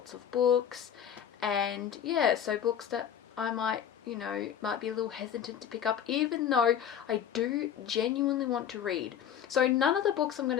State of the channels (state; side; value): quieter; right; 9.1 dB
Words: of books. And yeah, so books that I might be a little hesitant to pick up, even though I do genuinely want to read. So none of the books I'm going